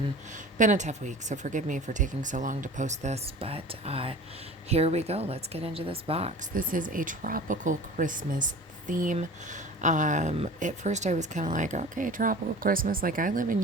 a tough week. So forgive me for taking so long to post this, but here we go. Let's get into this box. This is a tropical Christmas theme. At first I was kind of like, okay, tropical Christmas. Like I live in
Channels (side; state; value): both; normal; correlation 0.39